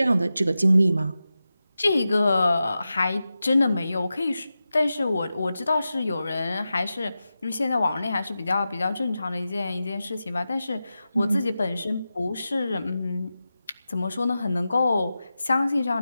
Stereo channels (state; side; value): inverted; both; correlation -0.92